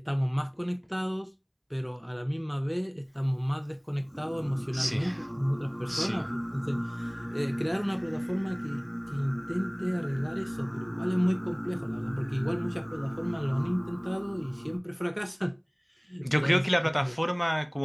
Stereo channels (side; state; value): both; identical; correlation 1.00